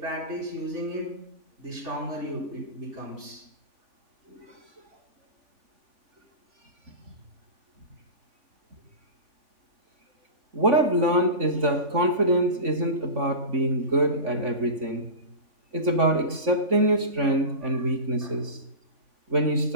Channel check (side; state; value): left; late; 3.5 ms